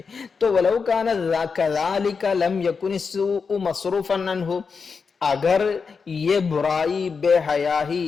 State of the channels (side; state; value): right; quieter; 5.3 dB